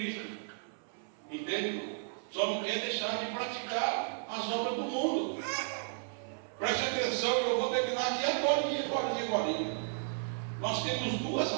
Entende? Só não quer deixar de praticar as obras do mundo. Preste atenção, eu vou terminar aqui agora. Nós temos duas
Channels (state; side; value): silent; left; 55 dB below the other